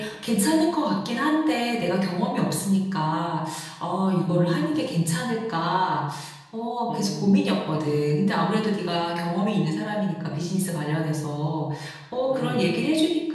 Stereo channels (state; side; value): identical; both; correlation 1.00